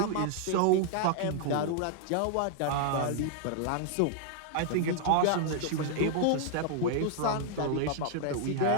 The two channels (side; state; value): both; different; correlation 0.00